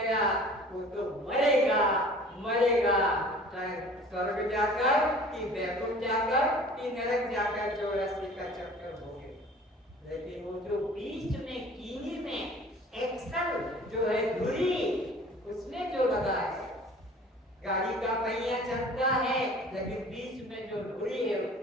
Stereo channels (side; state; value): both; normal; correlation 0.46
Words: वो तो मरेगा मरेगा, चाहे स्वर्ग जाकर कि वैकुंठ जाकर कि नरक जाकर 84 का चक्कर हो गए। लेकिन वो जो बीच में कीनी में एक्सल जो है धुरी, उसमें जो लगा है, गाड़ी का पहिया चलता है लेकिन बीच में जो धुरी है